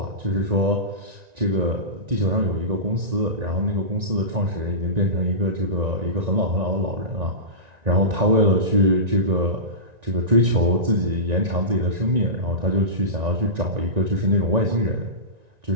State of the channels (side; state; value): left; late; 1.9 ms